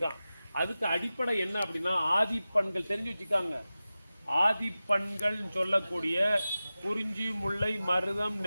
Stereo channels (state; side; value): inverted; both; correlation -0.95